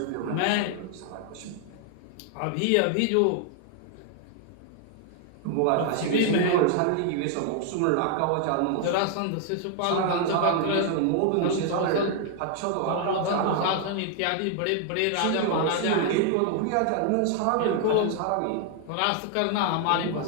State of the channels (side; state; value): both; different; correlation 0.00